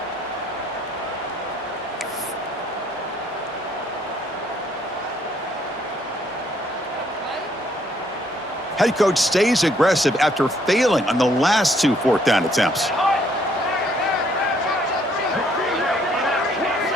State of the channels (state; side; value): normal; both; correlation 0.67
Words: Head coach stays aggressive after failing on the last 2 fourth down attempts.